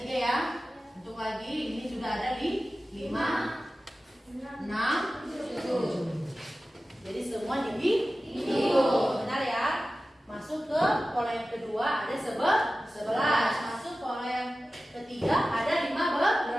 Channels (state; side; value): normal; both; correlation 0.95